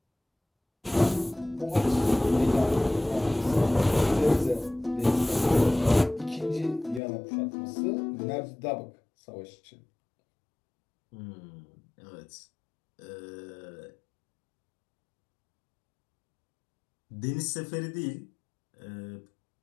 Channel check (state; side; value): drops out; right; at 7.0 s